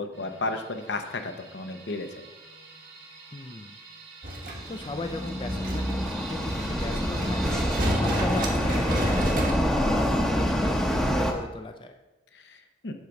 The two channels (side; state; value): both; normal; correlation 0.75